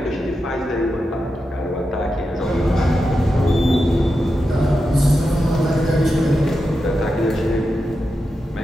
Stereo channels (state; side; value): normal; both; correlation 0.89